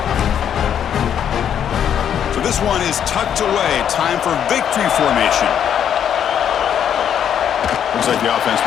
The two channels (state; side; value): quieter; right; 9.0 dB